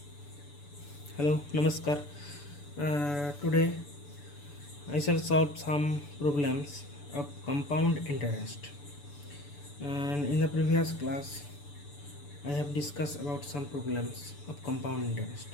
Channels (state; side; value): late; right; 6.9 ms